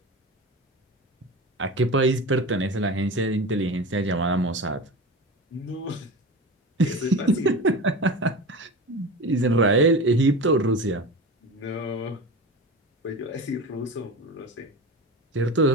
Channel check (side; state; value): both; normal; correlation 0.29